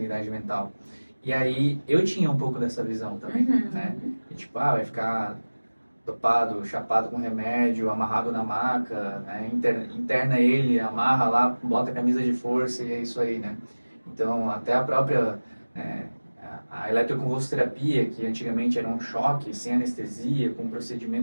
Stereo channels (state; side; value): inverted; both; correlation -1.00